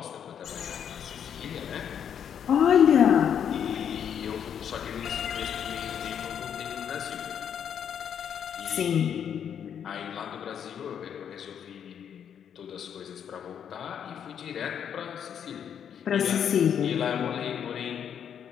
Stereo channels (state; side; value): quieter; right; 8.5 dB